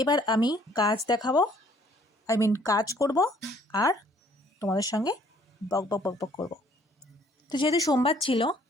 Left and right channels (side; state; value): both; normal; correlation 0.61